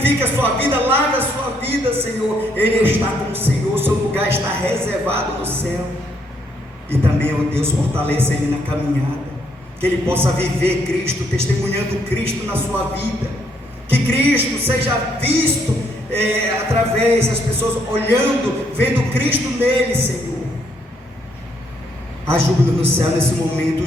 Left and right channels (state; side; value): normal; both; correlation 0.72